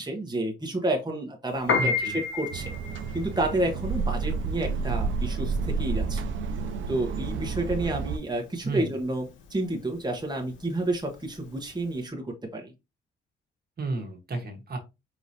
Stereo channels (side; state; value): both; normal; correlation 0.54